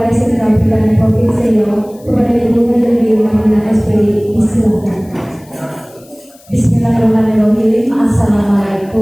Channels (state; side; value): noise; left; hiss, 27 dB below the sound